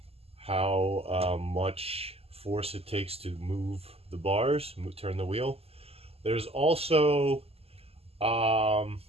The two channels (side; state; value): left; late; 0.29 ms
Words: much force it takes to move the bars, turn the wheel. There's also